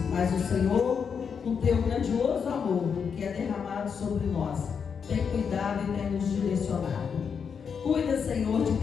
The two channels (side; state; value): right; quieter; 6.5 dB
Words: mas o Senhor, com Teu grandioso amor que é derramado sobre nós, tem cuidado e tem nos direcionado. Cuida, Senhor, de